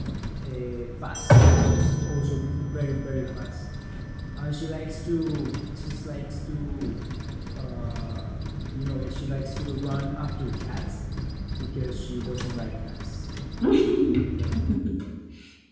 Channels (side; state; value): both; identical; correlation 1.00